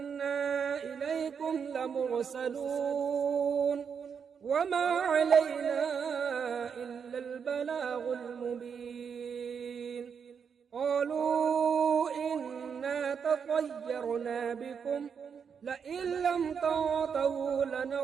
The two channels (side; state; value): left; quieter; 6.7 dB